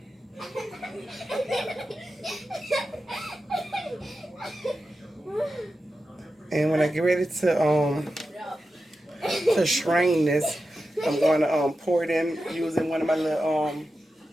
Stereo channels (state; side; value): normal; both; correlation 0.91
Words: And when I get ready to strain this, I'm going to pour it in using one of my little